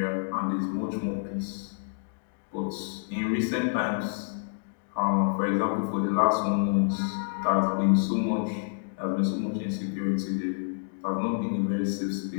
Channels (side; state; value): right; silent; digital silence